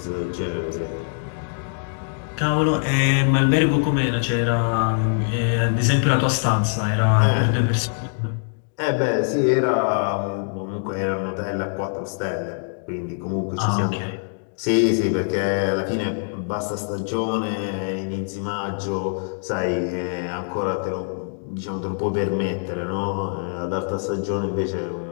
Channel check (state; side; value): silent; right; digital silence